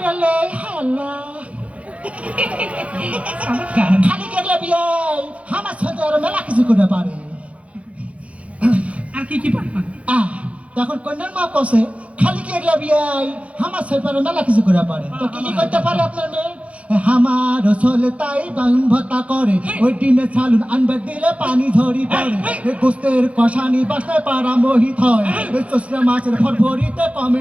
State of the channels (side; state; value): left; late; 0.064 ms